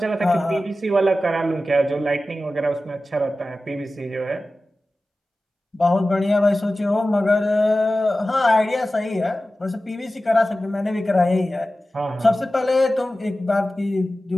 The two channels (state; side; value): normal; both; correlation 0.95